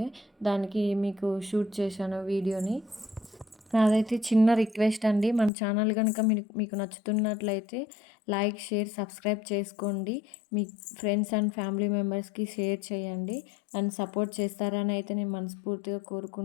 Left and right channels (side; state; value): right; drops out; at 5.5 s